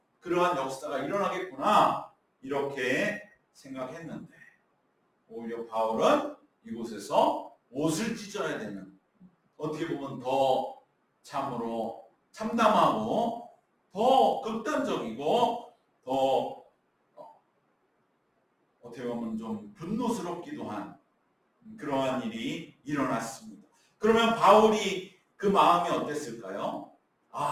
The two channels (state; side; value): identical; both; correlation 1.00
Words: 그러한 역사가 일어나겠구나 이렇게 생각했는데 오히려 바울은 이곳에서 옷을 찢어야 되는, 어떻게 보면 더 참으로 참담하고 더 극단적이고 더 어떻게 보면 좀 분노스럽기도 한 그러한 일이 일어났습니다. 그러면 바울이 그 마음이 어땠을까요?